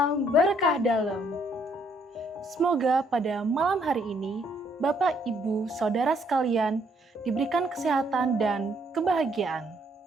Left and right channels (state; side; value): normal; both; correlation 0.69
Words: berkah dalam. Semoga pada malam hari ini, Bapak, Ibu, Saudara sekalian diberikan kesehatan dan kebahagiaan.